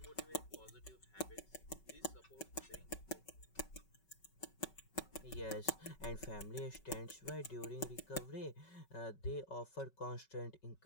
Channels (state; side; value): late; right; 5.3 ms